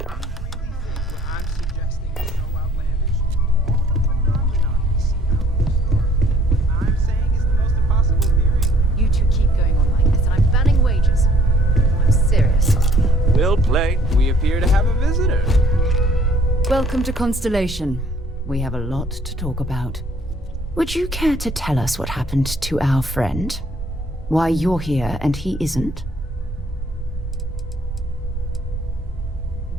You two keep going on like this, and I'm banning wages. I'm serious. Well played. We appear to have a visitor. Welcome to Constellation. We have a lot to talk about. Would you care to tell us what happened to our friend? Why you're here and he isn't?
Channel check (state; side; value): normal; both; correlation 0.60